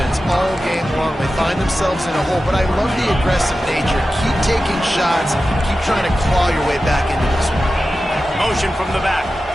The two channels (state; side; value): normal; both; correlation 0.93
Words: all game long. They find themselves in a hole, but I love the aggressive nature. Keep taking shots. Keep trying to claw your way back into this one. Motion from the back.